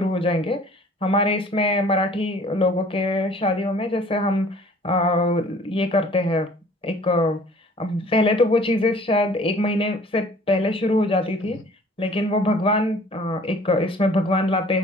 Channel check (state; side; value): normal; both; correlation 0.52